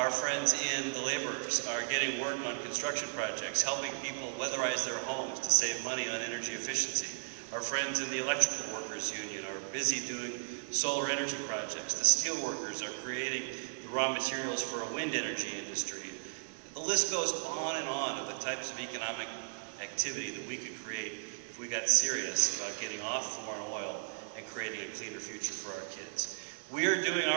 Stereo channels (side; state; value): left; silent; digital silence